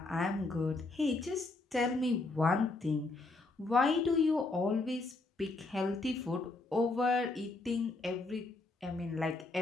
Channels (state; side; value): quieter; right; 3.3 dB